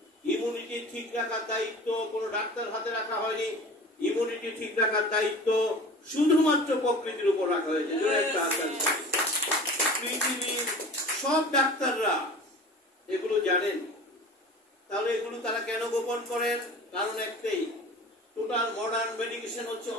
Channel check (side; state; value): both; normal; correlation 0.39